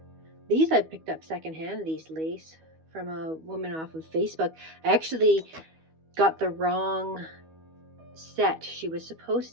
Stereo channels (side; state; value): left; late; 12 ms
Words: These I picked up secondhand, these lace, from a woman off of Facebook. I actually got the wrong set. She was